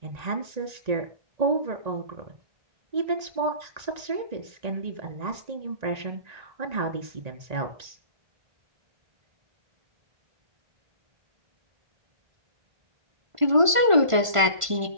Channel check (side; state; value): left; late; 1.4 ms